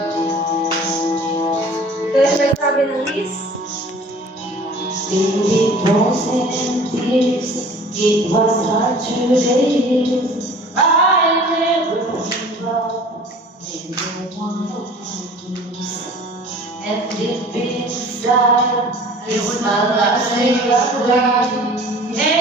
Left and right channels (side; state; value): both; normal; correlation 0.46